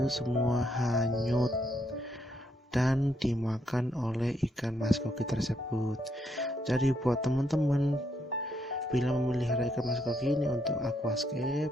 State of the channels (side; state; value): both; normal; correlation 0.75